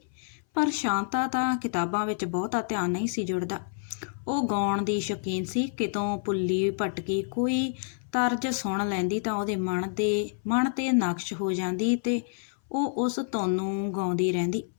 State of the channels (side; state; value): right; silent; 59 dB below the other